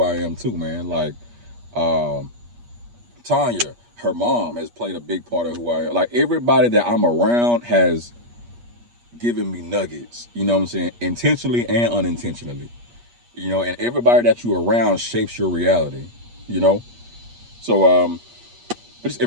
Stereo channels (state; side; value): late; left; 8.4 ms